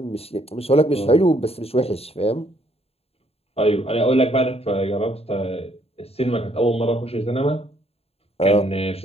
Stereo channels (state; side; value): late; right; 0.29 ms